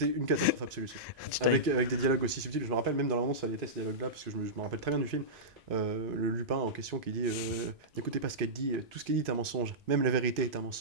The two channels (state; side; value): normal; both; correlation -0.14